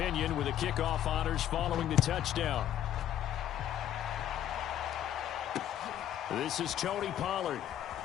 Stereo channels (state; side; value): quieter; right; 11.2 dB